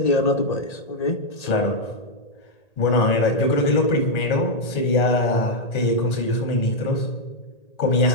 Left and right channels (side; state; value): right; late; 1.8 ms